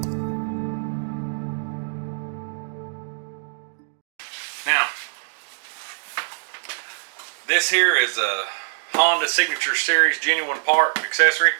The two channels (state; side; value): silent; left; digital silence